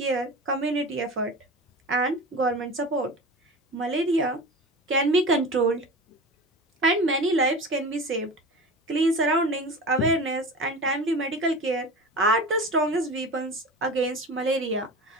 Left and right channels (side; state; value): both; normal; correlation 0.32